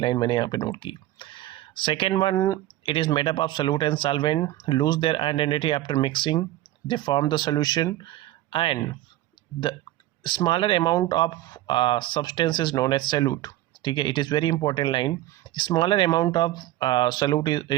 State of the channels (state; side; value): quieter; left; 15.0 dB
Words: मैंने यहाँ पे नोट की. Second one, it is made up of solute and solvent lose their identity after mixing, they form the solution and the smaller amount of substance is known as solute. ठीक है, it is very important line. Smaller amount of solute